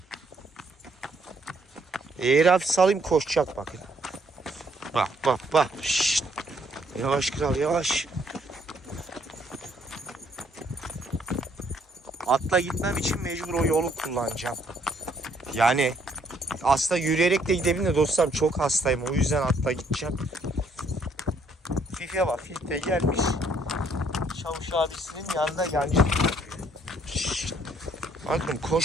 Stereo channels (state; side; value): normal; both; correlation 0.67